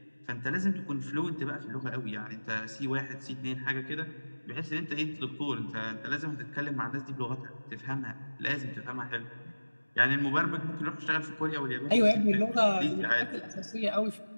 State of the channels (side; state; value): both; inverted; correlation -1.00